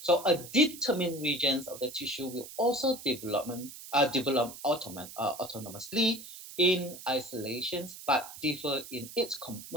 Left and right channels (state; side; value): noise; right; hiss, 14 dB below the sound